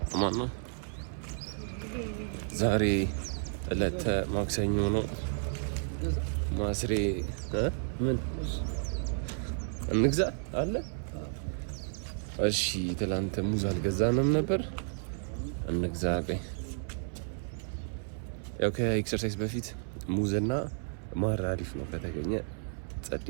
አማን ነው። ዛሬ ዕለተ ማክሰኞ ነው። ማስሬ ምን እንግዛ አለ? እሺ ትላንት ሙዝ አልገዛንም ነበር። እንግዛ ቆይ። ያው ከኤክሰርሳይዝ በፊት ሙዝና ማር አሪፍ ነው ከተገኘ ጸዴ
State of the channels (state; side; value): silent; left; 56 dB below the other